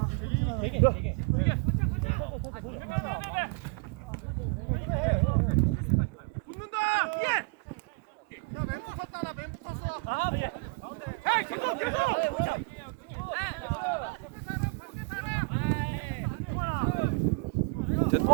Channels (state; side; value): quieter; left; 30.7 dB